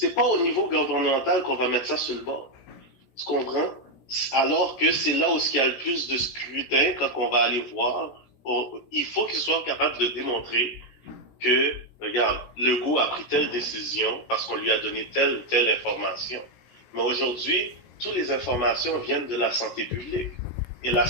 pas au niveau gouvernemental qu'on va mettre ça sur le bord. Tu comprends? Alors que c'est là où il y a le plus de scrutin quand on va aller voir. Il faut qu'il soit capable de démontrer que, regarde, Legault a pris telle décision parce qu'on lui a donné telle ou telle information. Mais aujourd'hui, toutes les informations viennent de la santé publique. Et la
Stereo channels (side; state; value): right; late; 16 ms